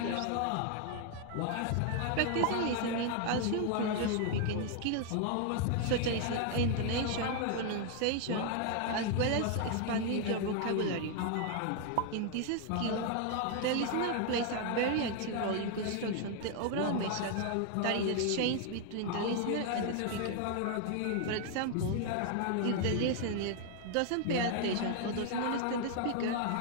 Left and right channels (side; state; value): both; different; correlation 0.00